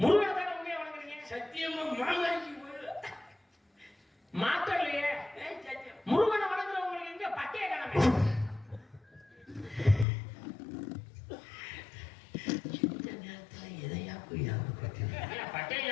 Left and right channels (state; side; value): drops out; right; at 10.1 s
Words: முருகனை தானே உண்மையா வணங்குறீங்க? சத்தியமா மாமாஜி மாத்தலையே. முருகனை வணங்குறவங்களுக்கு எங்க பட்டைய காணமே? இந்த நேரத்துல எதையா போய் பட்டைய